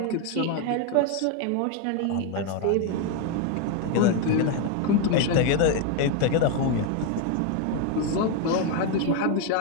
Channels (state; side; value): different; both; correlation 0.01